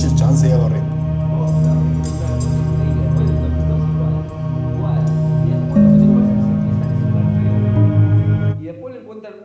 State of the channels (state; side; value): identical; both; correlation 1.00